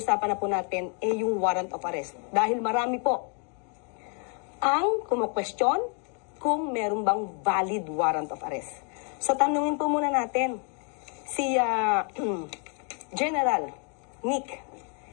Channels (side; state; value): right; quieter; 39.8 dB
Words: na po natin ay yung warrant of arrest. Dahil marami po ang kumu-question kung meron bang valid warrant of arrest. So, tanungin po muna natin si General Nick.